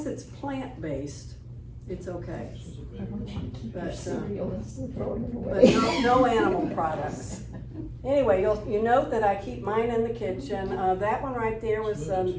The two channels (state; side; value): identical; both; correlation 1.00